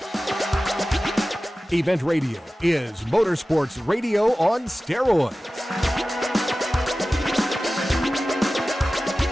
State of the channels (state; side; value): normal; both; correlation 0.96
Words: Event Radio is motorsports radio on steroids.